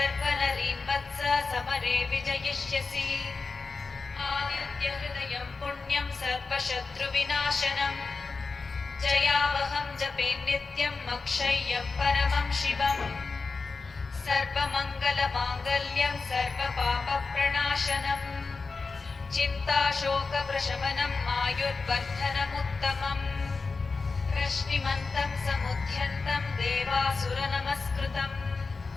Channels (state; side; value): quieter; right; 4.3 dB